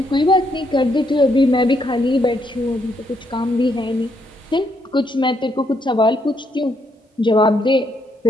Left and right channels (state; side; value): normal; both; correlation 0.75